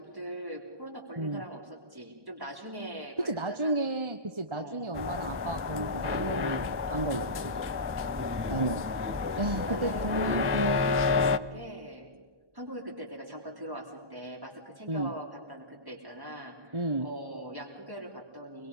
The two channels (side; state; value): left; late; 1.1 ms